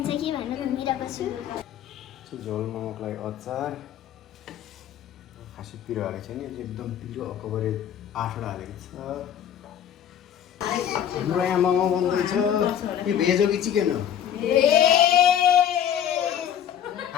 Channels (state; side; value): quieter; right; 9.6 dB